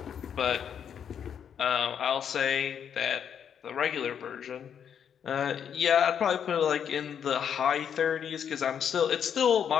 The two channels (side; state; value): right; quieter; 8.2 dB